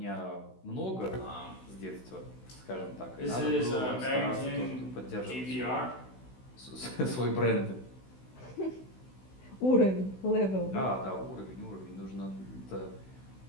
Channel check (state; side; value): late; right; 16 ms